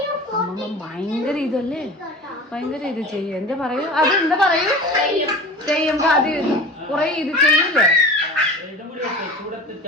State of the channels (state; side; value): normal; both; correlation 0.36